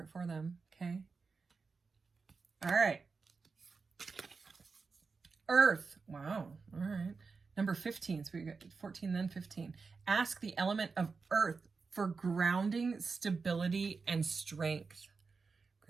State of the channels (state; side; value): quieter; left; 4.7 dB